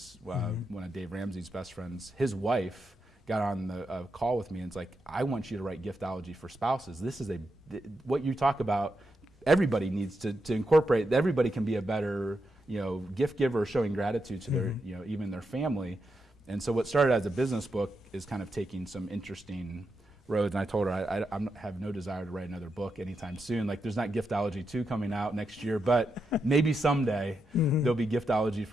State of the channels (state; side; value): normal; both; correlation 0.85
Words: one of Dave Ramsey's best friends, his wife got on the call with me and it's like, I want you to write giftology for spouses. This is what you talk about, everybody needs to incorporate. Everybody can be a better gift giver, showing gratitude to their, even their family. And so what started as a business book is kind of taking some interesting roads. And I told her I have no desire to write another book anytime soon. Like, there's not Giftology 2 coming out next year, but maybe someday there'll be Giftology